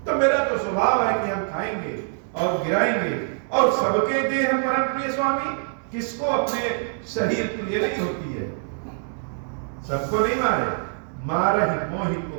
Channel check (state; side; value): silent; left; 62 dB below the other